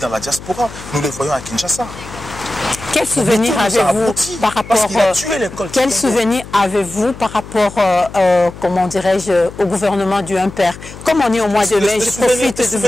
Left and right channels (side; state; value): left; noise; hum, 15 dB below the sound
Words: la diaspora, nous le voyons à Kinshasa. Quel souvenir avez-vous par rapport comment dirais-je, au gouvernement du Impère? Comme on est au mois de mai, je profite de